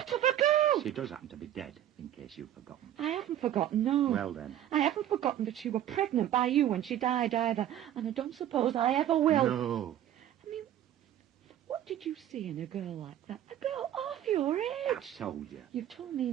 of a girl! She does happen to be dead, in case you've forgotten. I haven't forgotten, no. Well, then. I haven't forgotten that she were pregnant by you when she died either, and I don't suppose I ever will. No. I mean, What did you see in a girl like that? A girl half your age? I've told you. You've told me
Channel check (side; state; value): left; quieter; 11.6 dB